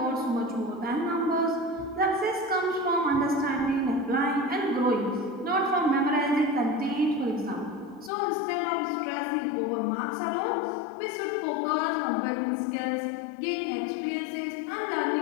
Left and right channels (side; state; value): right; drops out; at 8.1 s